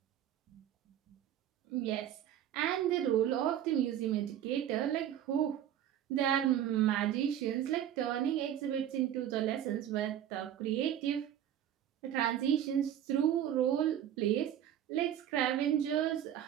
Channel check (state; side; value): quieter; left; 10.8 dB